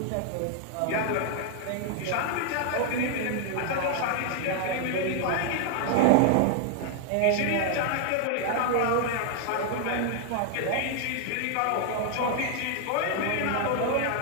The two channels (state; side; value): different; both; correlation 0.00